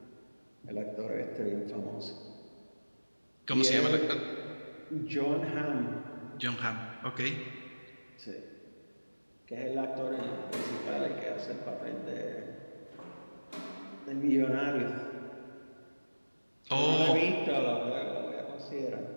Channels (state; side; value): inverted; both; correlation -1.00